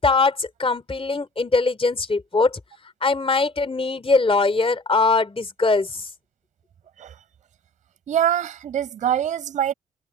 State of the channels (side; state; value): both; normal; correlation 0.44